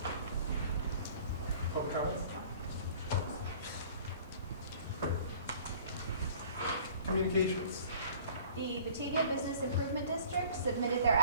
Public comments? Communications. The Batavia Business Improvement District submitted their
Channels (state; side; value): inverted; both; correlation -0.50